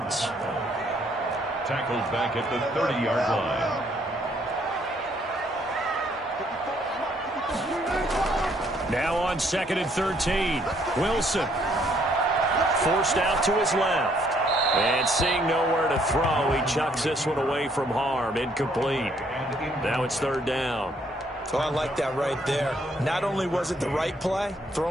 Tackled back at the 30-yard line. Now on 2nd and 13. Wilson. Forced out to his left. And seeing nowhere to throw, he chucks this one away from harm. Incomplete. Now it's 3rd down. So I like that right there. Not only was it the right play,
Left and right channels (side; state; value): both; normal; correlation 0.67